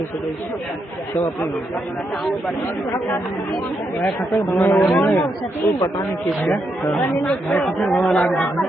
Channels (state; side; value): normal; both; correlation 0.81